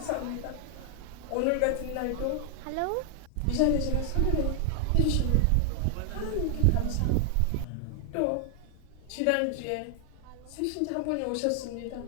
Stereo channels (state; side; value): different; both; correlation 0.00